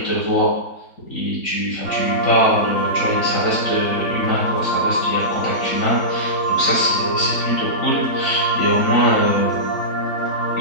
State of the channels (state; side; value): late; right; 3.9 ms